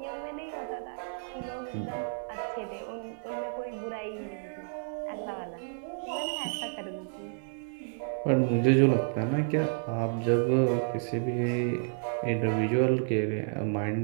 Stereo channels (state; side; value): silent; left; digital silence